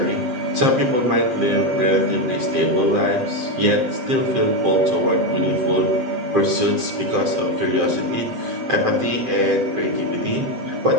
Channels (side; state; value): left; late; 7.7 ms